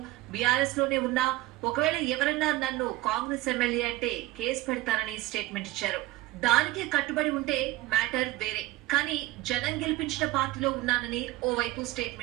బీఆర్ఎస్ లోనే ఉన్నా, ఒకవేళ ఎవరన్నా నన్ను కాంగ్రెస్ ఎమ్మెల్యే అంటే కేసు పెడతారని స్టేట్మెంట్ ఇచ్చారు. దానికే కట్టుబడి ఉంటే మ్యాటర్ వేరే. కానీ జనం గెలిపించిన పార్టీలో ఉన్నానని ఓవైపు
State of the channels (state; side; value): quieter; left; 17.6 dB